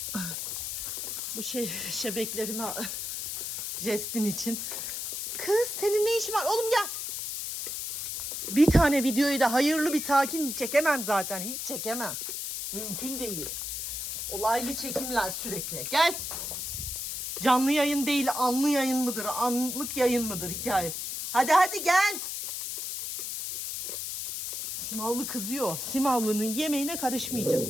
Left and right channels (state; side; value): noise; left; hiss, 4 dB below the sound